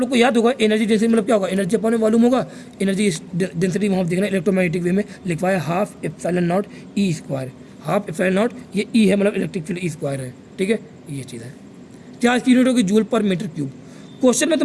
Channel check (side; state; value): both; identical; correlation 1.00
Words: लोग को याद होगा एनर्जी डेंसिटी मतलब क्या होगा, एनर्जी अपॉन वॉल्यूम होगा। एनर्जी डेंसिटी वहाँ देखना इलेक्ट्रोमैग्नेटिक वे में लिखवाया half epsilon not E square. Half epsilon not, ये ई है मतलब इलेक्ट्रिक फील्ड ई स्क्वायर है, ठीक है, ये चीज़ है। चार्ज की यूनिट होगी जूल पर मीटर क्यूब। क्वेश्चन में